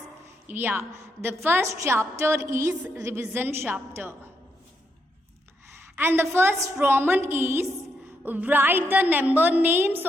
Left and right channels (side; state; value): both; normal; correlation 0.79